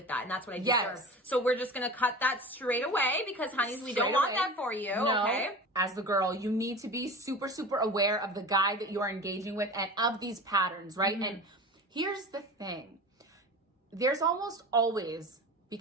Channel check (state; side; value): normal; both; correlation 0.33